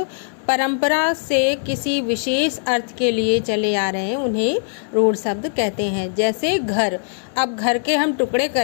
परंपरा से किसी विशेष अर्थ के लिए चले आ रहे हैं उन्हें रूढ़ शब्द कहते हैं। जैसे घर, अब घर के हम टुकड़े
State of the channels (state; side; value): silent; right; digital silence